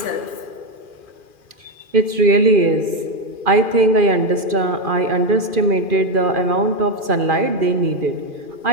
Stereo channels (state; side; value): late; left; 2.4 ms